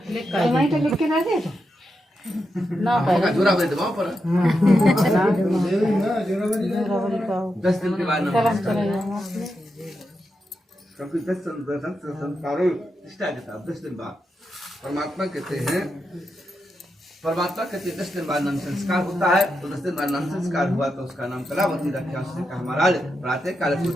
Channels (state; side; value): normal; both; correlation 0.86